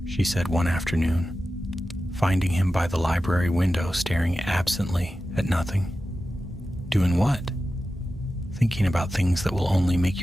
she said one afternoon, finding him by the library window staring absently at nothing. "Doing what?" "Thinking about things that will only make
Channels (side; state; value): both; normal; correlation 0.93